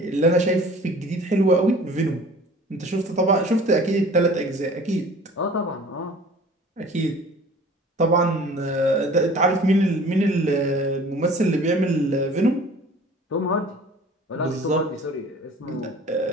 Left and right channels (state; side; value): normal; both; correlation 0.47